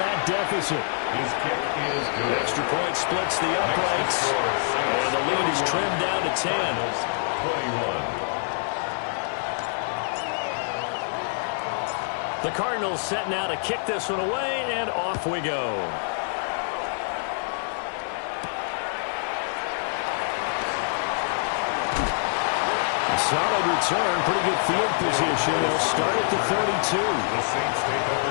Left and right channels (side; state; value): right; silent; 61 dB below the other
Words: deficit. His kick is good. Extra point splits the uprights. And the lead is trimmed down to 10. 21. The Cardinals set now to kick this one away, and off we go. A solid return, pretty good field position. They'll start at the 32. The Saints take